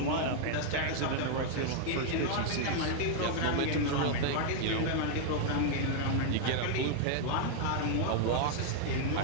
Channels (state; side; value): different; both; correlation 0.00